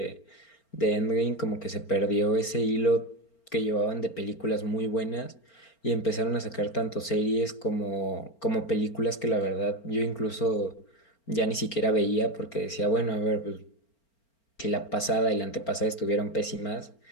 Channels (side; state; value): right; late; 4.4 ms